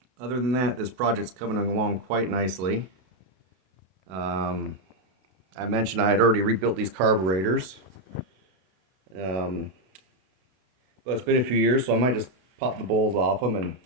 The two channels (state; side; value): late; left; 32 ms